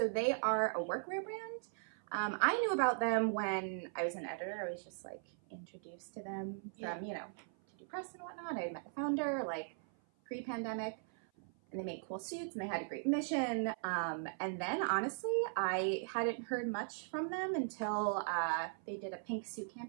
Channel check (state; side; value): silent; left; 52 dB below the other